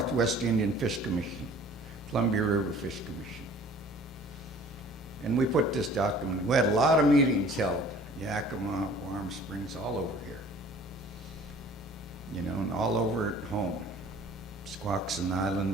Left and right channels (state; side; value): normal; both; correlation 0.50